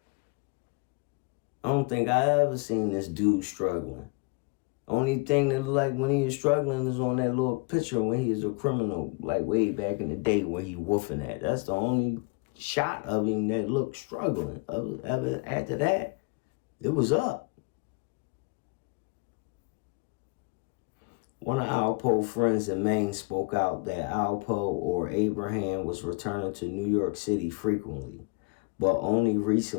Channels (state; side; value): quieter; right; 29.8 dB